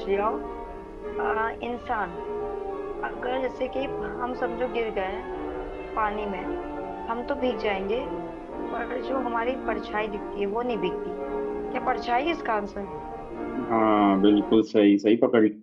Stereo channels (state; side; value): identical; both; correlation 1.00